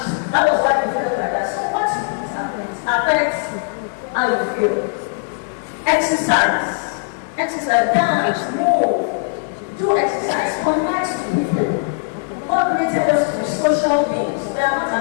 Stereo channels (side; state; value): right; silent; digital silence